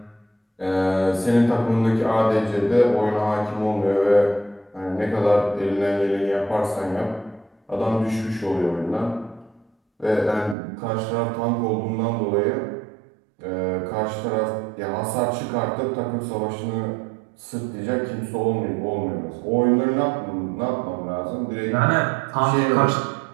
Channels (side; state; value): left; drops out; at 10.6 s